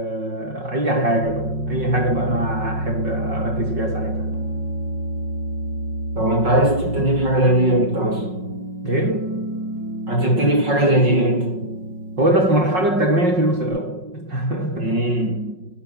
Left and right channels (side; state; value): left; late; 5.4 ms